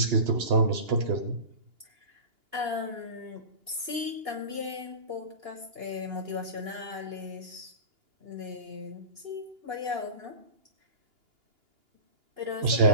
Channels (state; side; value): late; left; 2.8 ms